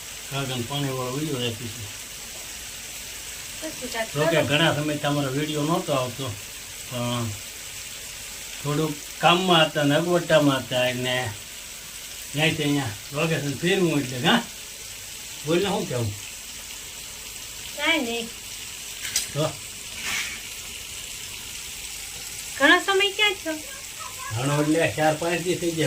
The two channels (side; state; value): both; identical; correlation 1.00